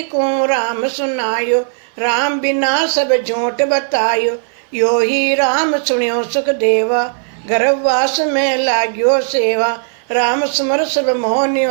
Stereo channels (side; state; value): left; silent; 58 dB below the other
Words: को राम सुनायो, राम बिना सब झूठ बतायो, यो ही राम सुनियो सुख देवा, गर्भवास में लाग्यो सेवा, राम सुमर सब मोह